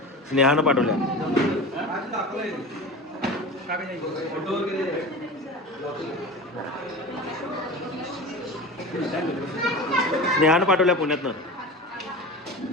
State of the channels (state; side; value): normal; both; correlation 0.31